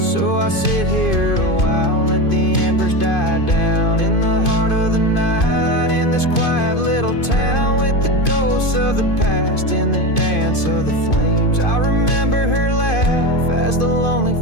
So I sit here a while, let the embers die down. In the heart of the night, in this quiet little town, with the ghosts of the past in the dance of the flames, I remember her laugh as the lonely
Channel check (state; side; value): late; right; 2.5 ms